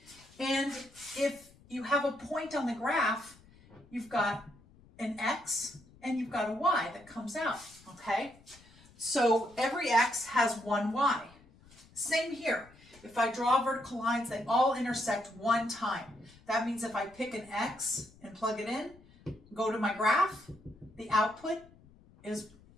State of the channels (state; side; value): noise; left; rumble, 26 dB below the sound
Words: and if you have a point on the graph, you've got an x and you've got a y that comes out, okay? So every x has one y. Same here. If I draw vertical lines, they all intersect one time. That means if I pick an x and plug it in, go to my graph, the output is